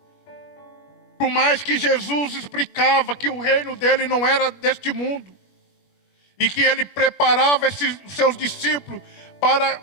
Por mais que Jesus explicava que o reino dele não era deste mundo, e que ele preparava seus discípulos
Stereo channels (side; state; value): right; late; 21 ms